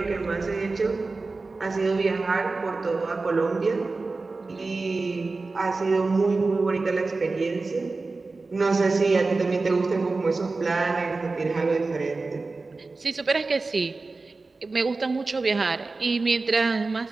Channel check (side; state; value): left; quieter; 3.7 dB